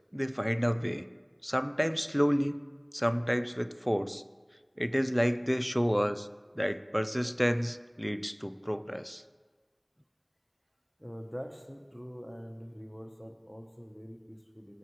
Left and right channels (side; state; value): both; identical; correlation 1.00